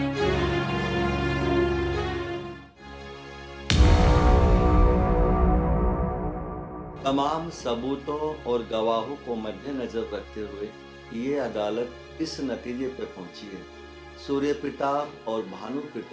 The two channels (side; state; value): both; identical; correlation 1.00